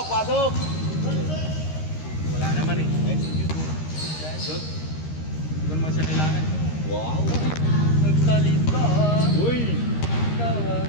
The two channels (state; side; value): late; right; 13 ms